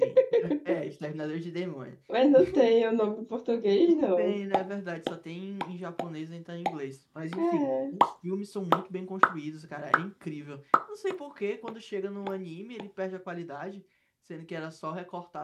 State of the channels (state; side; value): identical; both; correlation 1.00